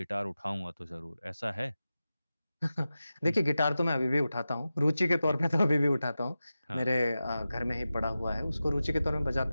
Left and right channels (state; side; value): inverted; both; correlation -0.94